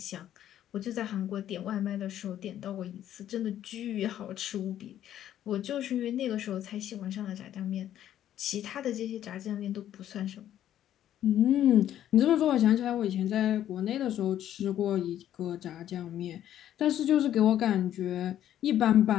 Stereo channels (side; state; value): right; quieter; 11.4 dB